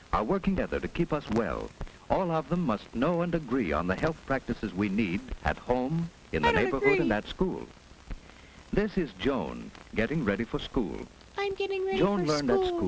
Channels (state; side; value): identical; both; correlation 1.00